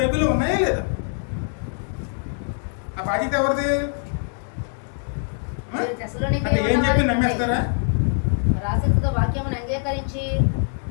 ఉన్నాయా లేదా? ఆ బాధ్యత ఎవరిది? అంటే ఏం చెప్పి నమ్మేస్తారా? రాసిక వాక్యమును అంగీకరించి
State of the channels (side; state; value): right; silent; 59 dB below the other